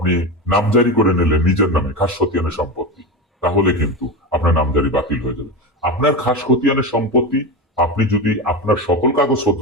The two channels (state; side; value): normal; both; correlation 0.20